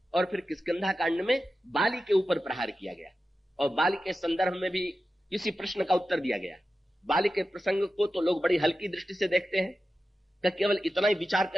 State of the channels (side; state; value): both; normal; correlation 0.92